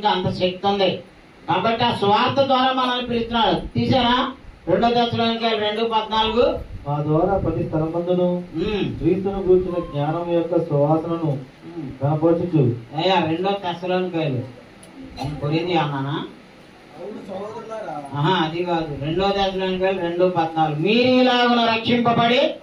అంత శక్తి ఉంది. కాబట్టి ఆ స్వార్థ ద్వారా మనల్ని పిలుస్తున్నాడు. తీసారా? 2వ దశలోనికాయలు 2:14. మా ద్వారా ప్రతి స్థలమందును క్రీస్తును గూర్చిన జ్ఞానం యొక్క సువాసనను కనపరచుచు. అయ్యా 2వ దశలోనికాయలు కొరింది అన్నానా? అది కాదు. 2వ దశలోనికాయలు 2:14. మీరు ఇలాగున రక్షింపబడి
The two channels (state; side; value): identical; both; correlation 1.00